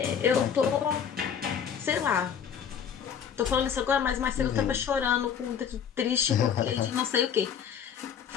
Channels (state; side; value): quieter; right; 7.9 dB